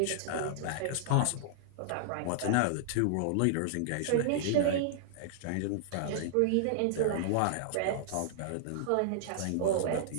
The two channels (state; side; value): different; both; correlation -0.01